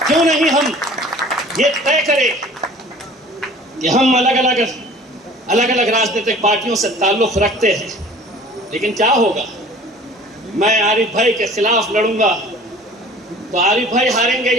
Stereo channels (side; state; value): both; normal; correlation 0.47